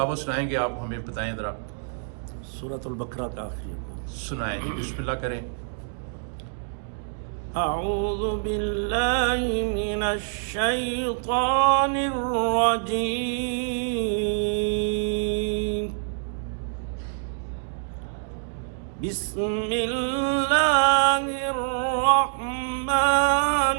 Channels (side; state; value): left; silent; digital silence